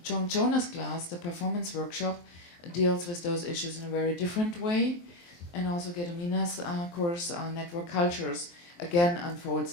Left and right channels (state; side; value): late; right; 23 ms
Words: Joan Jonah's class, the performance workshop, deals with those issues in a very different way, and also Gedomina's course, Network Cultures, again unfolds